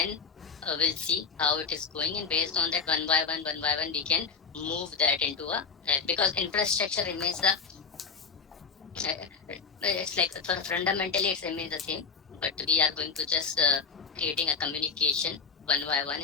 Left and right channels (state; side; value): quieter; right; 5.3 dB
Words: we'll see how it is going, and based on that, one by one, we can move that into because infrastructure remains it's like fundamentally it's remains the same, but we are going to just creating a communication one by one